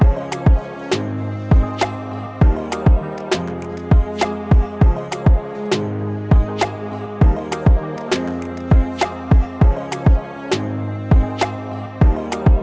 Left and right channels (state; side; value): identical; both; correlation 1.00